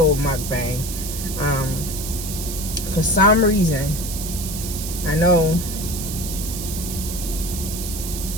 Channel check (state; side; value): noise; right; hiss, 7 dB below the sound